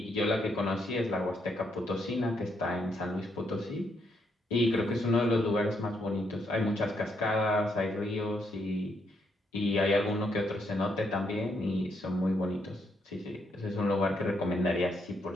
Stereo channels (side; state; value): both; normal; correlation 0.76